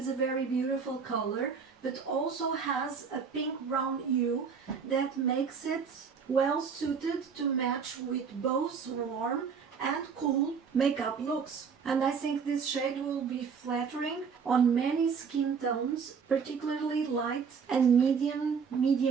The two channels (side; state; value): left; quieter; 6.1 dB